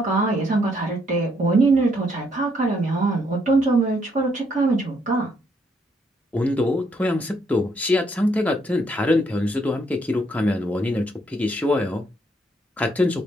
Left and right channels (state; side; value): normal; both; correlation 0.72